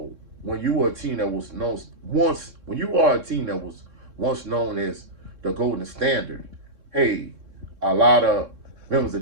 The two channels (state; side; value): late; left; 3.6 ms